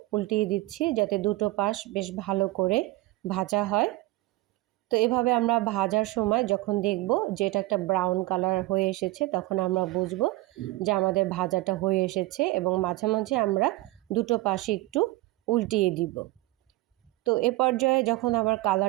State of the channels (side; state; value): left; quieter; 19.6 dB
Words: উল্টিয়ে দিচ্ছি যাতে দুটো পাশ বেশ ভালো করে ভাজা হয়। তো এভাবে আমরা ভাজার সময় যখন দেখব যে এটা একটা ব্রাউন কালার হয়ে এসেছে তখন আমরা বুঝবো যে আমাদের ভাজাটা হয়ে এসেছে এবং মাঝে মাঝে আমরা দুটো পাশে একটু উল্টিয়ে দিব। তো এ পর্যায়ে যখন আবার